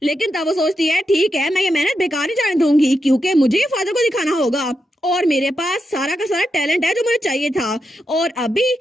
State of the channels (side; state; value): both; normal; correlation 0.86